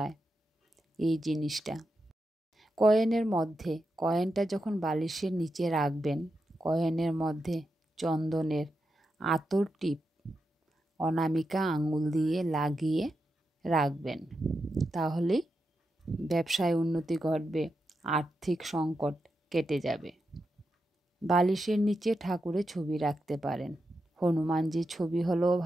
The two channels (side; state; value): both; normal; correlation 0.87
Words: এই জিনিসটা। কয়েনটা যখন বালিশের নিচে রাখবেন, কয়েনের মধ্যে চন্দনের আতর টিপ অনামিকা আঙুল দিয়ে লাগিয়ে রাখবেন। তাহলেই ব্যবসায় উন্নতি ঘটবে, আর্থিক সংকট কেটে যাবে। বালিশের নিচে ঠাকুরের ছবি রাখতে পারেন। হনুমানজির ছবি হলেও